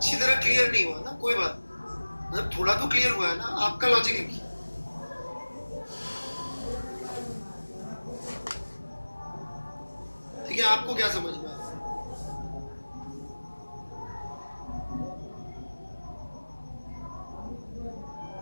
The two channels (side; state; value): both; inverted; correlation -1.00